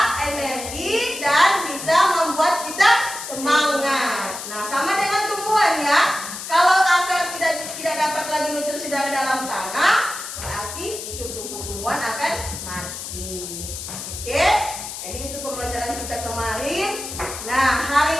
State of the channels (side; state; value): left; noise; hiss, 8 dB below the sound